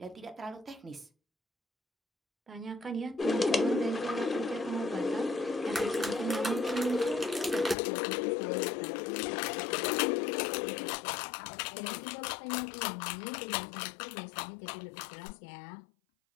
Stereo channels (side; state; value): right; drops out; at 7.8 s